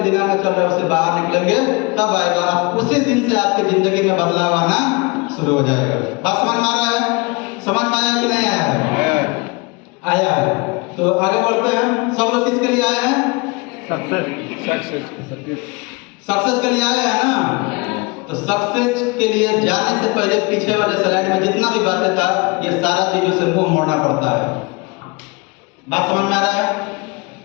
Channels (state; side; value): quieter; right; 27.8 dB